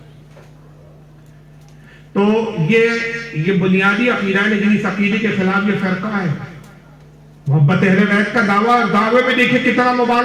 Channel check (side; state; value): both; identical; correlation 1.00